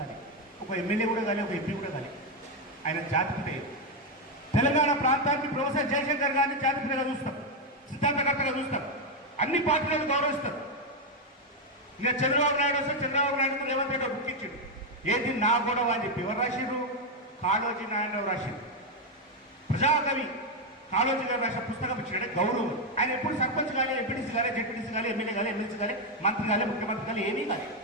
ఒక ఎమ్మెల్యే కూడా కానీ, ఒక ఎంపీ కూడా కానీ, ఆయన జాతిపిత. తెలంగాణ ప్రాంతానికి ప్రొఫెసర్ జయశంకర్ గారిని జాతిపితగా చూస్తాం, సిద్ధాంతకర్తగా చూస్తాం, అన్ని పార్టీలను గౌరవిస్తారు. ఇక చంద్రబాబు నాయుడు వస్తే చంద్రబాబు నాయుడు రేవంత్ రెడ్డి బుక్ ఇచ్చిండు, ఏది నా గొడవ అని చెప్పి. ఎవరు రాసిరు? కాళోజీ నారాయణరావు రాసిరు. ప్రజాకవి కాళోజీ గారు రాసిన పుస్తకం ఇచ్చాడు గౌరవం. ఆయన ఎప్పుడు సర్పంచ్ కానీ, ఎంపీటీసీ కానీ, జెడ్పీటీసీ కానీ, ఎమ్మెల్యే కానీ, ఎమ్మెల్సీ కానీ, మంత్రి కానీ, ముఖ్యమంత్రి కానీ ఏమీ కానీ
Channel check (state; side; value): normal; both; correlation 0.04